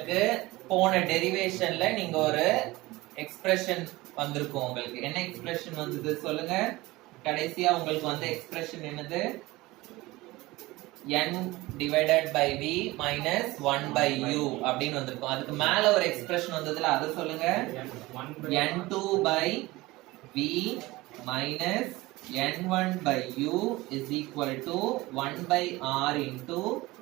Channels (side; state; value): left; quieter; 20.1 dB